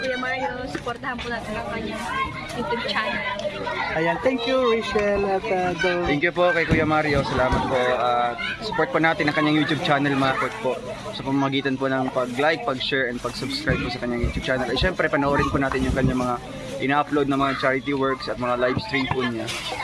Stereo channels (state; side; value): identical; both; correlation 1.00